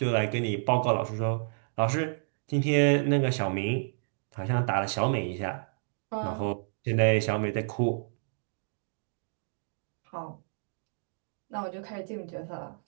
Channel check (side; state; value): left; silent; digital silence